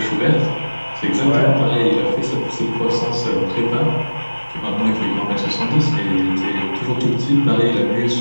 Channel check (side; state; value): both; inverted; correlation -1.00